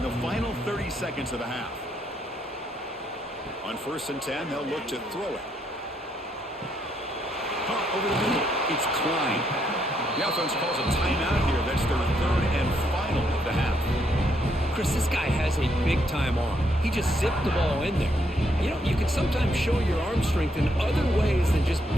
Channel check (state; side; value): normal; both; correlation 0.75